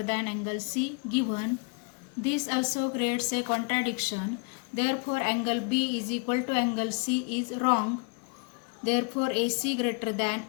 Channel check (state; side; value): quieter; right; 35.1 dB